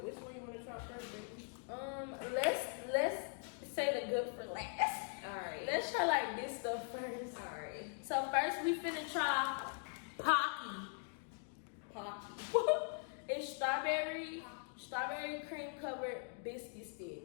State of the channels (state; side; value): silent; right; 50 dB below the other